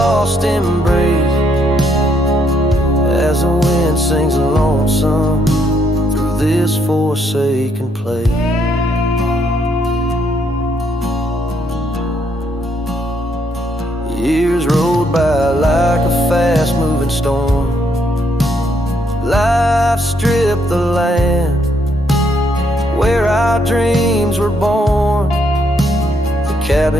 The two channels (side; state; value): both; normal; correlation 0.73